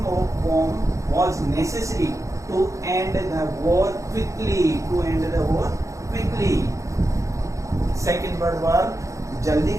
bomb was necessary to end the war quickly. Second World War जल्दी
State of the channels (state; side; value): late; left; 0.15 ms